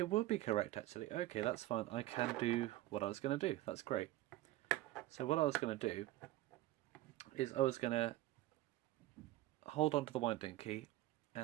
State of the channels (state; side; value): quieter; left; 16.3 dB